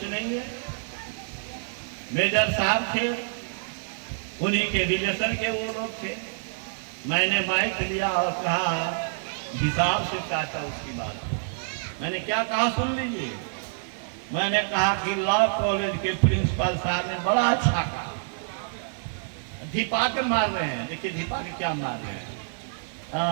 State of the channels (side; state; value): left; silent; 60 dB below the other